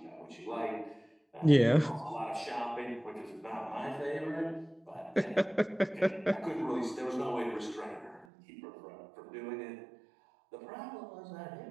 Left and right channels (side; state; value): left; drops out; at 8.2 s